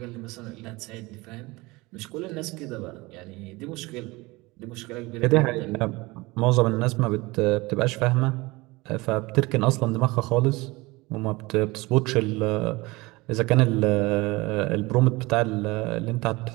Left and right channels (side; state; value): left; quieter; 22.7 dB